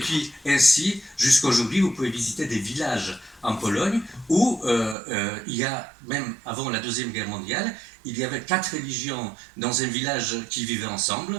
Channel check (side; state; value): left; drops out; at 5.0 s